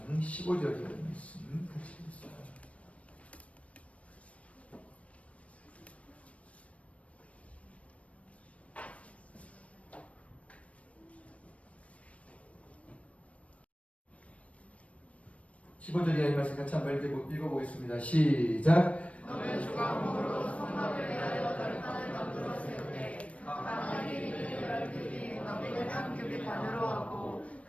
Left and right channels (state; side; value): late; right; 0.064 ms